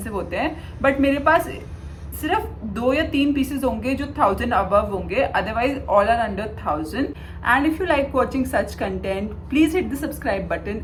होते हैं, बट मेरे पास सिर्फ 2 या 3 पीसेज होंगे जो 1000 अबव होंगे, otherwise all are under 1000। And if you like watching such content, please hit the subscribe button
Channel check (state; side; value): identical; both; correlation 1.00